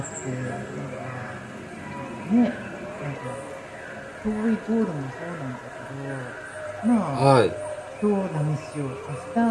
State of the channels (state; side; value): identical; both; correlation 1.00